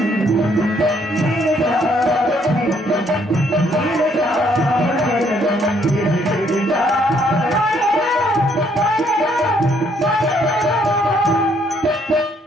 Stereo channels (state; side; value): normal; both; correlation 0.68